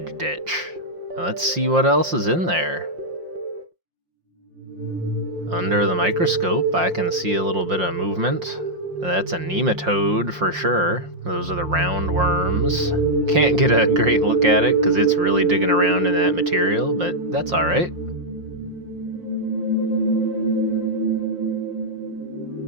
ditch. Let's see what else is in there. Under the microscope, I can see a little bit of movement. That's a nematode for sure. Those are the round worms. Can't get a great look at it because it's really digging around in that material, but that's alright.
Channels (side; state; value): left; late; 5.7 ms